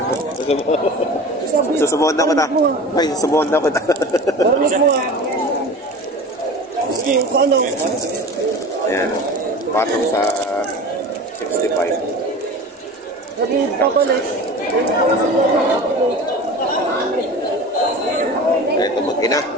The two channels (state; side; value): normal; both; correlation 0.35